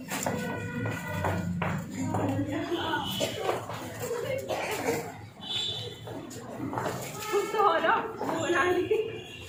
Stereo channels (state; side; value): identical; both; correlation 1.00